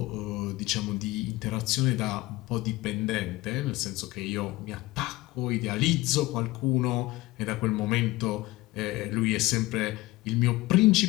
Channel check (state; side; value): quieter; right; 19.3 dB